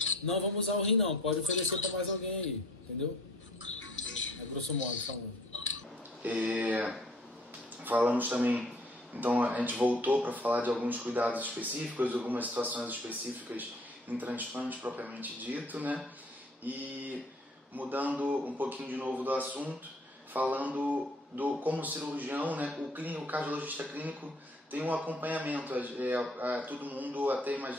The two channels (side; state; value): both; normal; correlation 0.55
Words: não vamos usar o rim não, pode oferecer para mais alguém aí, entendeu? É grosso modo falando. Falamos também, então a gente voltou para falar de alguns cuidados específicos, algumas situações específicas em transplante propriamente dito, né? E mudando um pouquinho de novo do assunto, falando como cirurgião, né? O cardiologista clínico tem um acompanhamento, todo mundo até